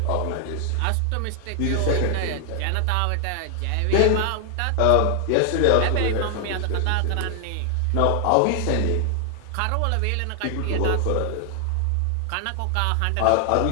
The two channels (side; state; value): both; different; correlation 0.00